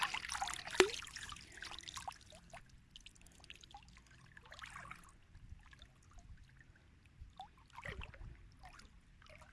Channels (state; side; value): identical; both; correlation 1.00